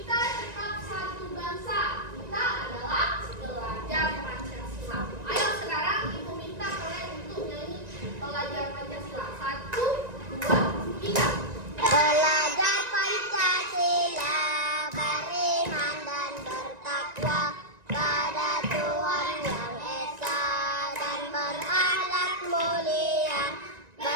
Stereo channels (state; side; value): late; left; 1.9 ms